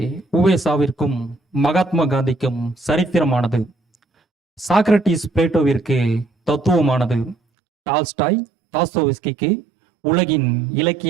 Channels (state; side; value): drops out; left; at 7.4 s